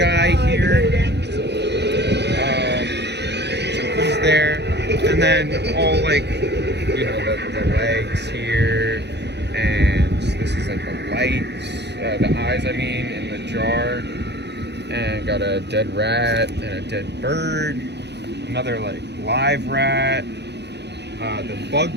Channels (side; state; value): left; late; 0.50 ms